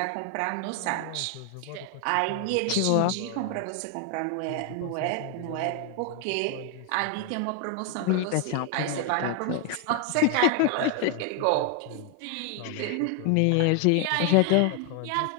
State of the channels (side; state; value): both; different; correlation 0.01